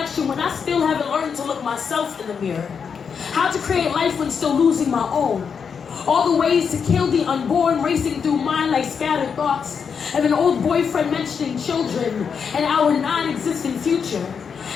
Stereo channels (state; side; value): quieter; right; 6.4 dB